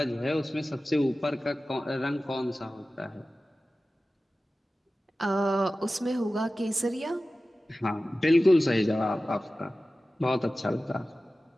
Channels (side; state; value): both; normal; correlation 0.96